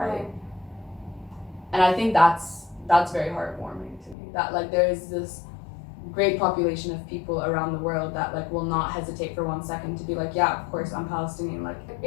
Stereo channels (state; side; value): drops out; right; at 4.2 s